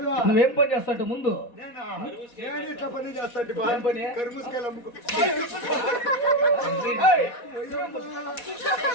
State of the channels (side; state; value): right; late; 4.2 ms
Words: నువ్వేం పని చేస్తావు ముందు? ఏం పని?